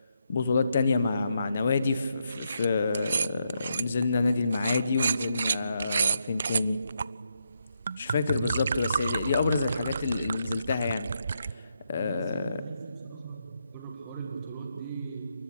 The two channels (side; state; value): both; inverted; correlation -0.81